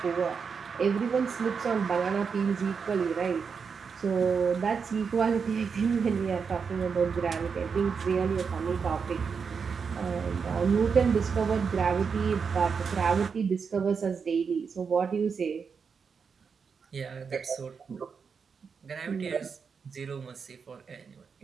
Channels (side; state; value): left; quieter; 5.9 dB